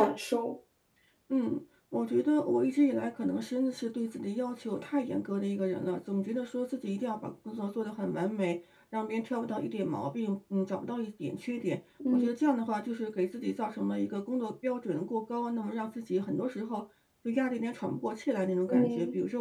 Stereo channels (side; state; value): both; identical; correlation 1.00